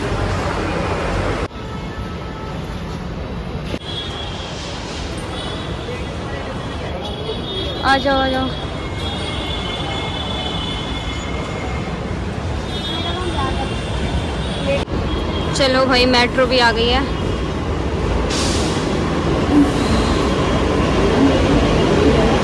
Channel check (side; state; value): both; identical; correlation 1.00